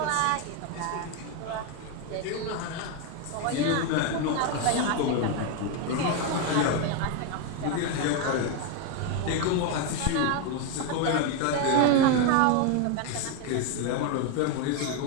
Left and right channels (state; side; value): different; both; correlation 0.02